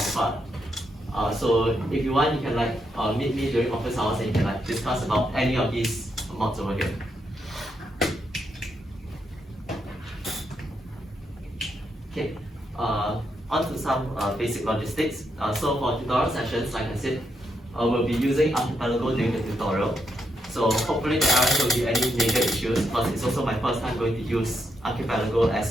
far. So if you want, you can like meet me during office hours and you can like discuss about any of these mods over here. Okay, on to some basic logistics. So for tutorial sessions, like I said, we'll be using archipelago during the tutorial. So hopefully there aren't going to be any major issues because it's also my first time going to use archipelago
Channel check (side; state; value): both; normal; correlation 0.81